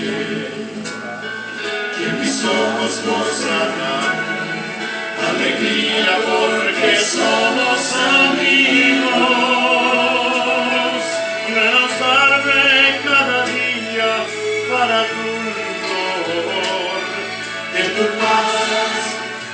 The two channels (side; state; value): both; identical; correlation 1.00